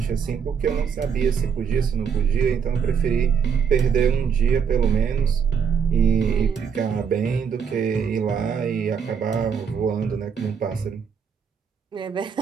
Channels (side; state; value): left; quieter; 6.9 dB